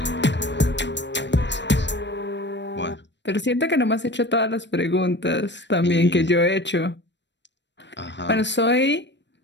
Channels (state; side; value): late; right; 0.52 ms